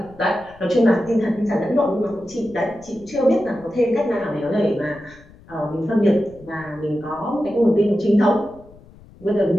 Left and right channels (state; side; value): noise; left; rumble, 24 dB below the sound